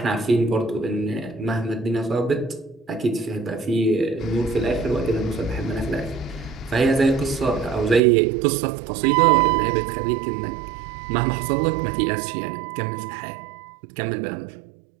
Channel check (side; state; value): left; drops out; at 8.0 s